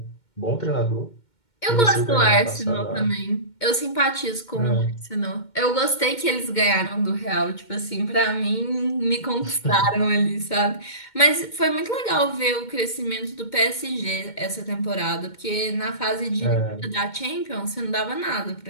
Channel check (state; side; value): late; right; 2.1 ms